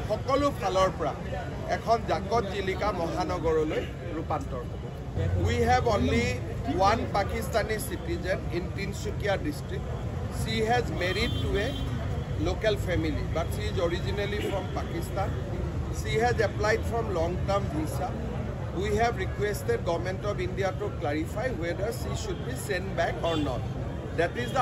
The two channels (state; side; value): identical; both; correlation 1.00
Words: সকলো ফালৰ পৰা এখন জাকত জিলিকা মহানগৰলৈ ৰূপান্তৰ হ'ব We have only one Pakistani citizen in Tinsukia district. She has married to a local family, but she is originally from Pakistan. She has applied from long-term visa. We have requested Government of India to clarify whether she should be sent back or not. That is